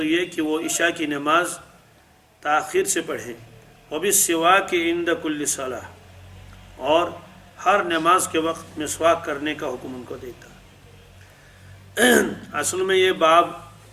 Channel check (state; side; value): identical; both; correlation 1.00